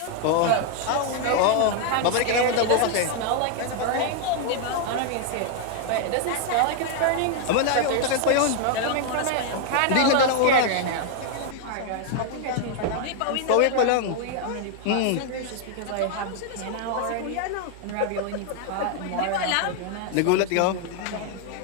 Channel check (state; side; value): different; both; correlation 0.00